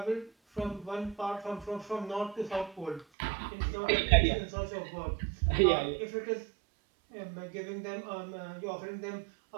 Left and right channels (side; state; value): left; drops out; at 3.1 s